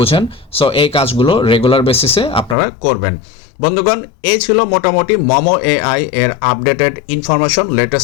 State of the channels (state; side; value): drops out; right; at 2.6 s